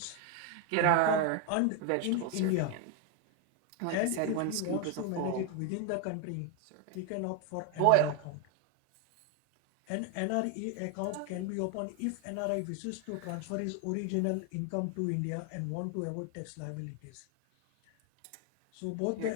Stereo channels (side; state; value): both; different; correlation 0.01